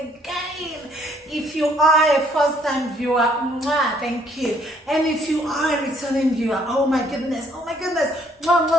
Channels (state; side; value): normal; both; correlation 0.64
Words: If you are a first-time viewer, thank you. And if you are a returning viewer, oh my goodness,